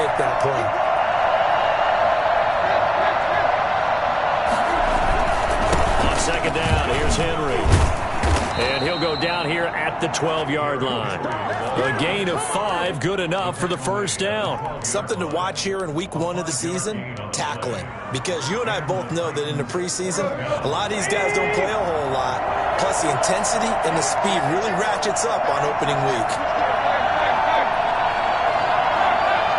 that play. Second down, here's Henry. And he'll go down here at the 12-yard line. A gain of 5, good enough for the first down. Something to watch here in week 1 of the season, tackling. Because you and I both know that in the preseason, a lot of these guys don't play a whole lot. Plus, the intensity and the speed really ratchets up on opening week.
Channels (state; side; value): identical; both; correlation 1.00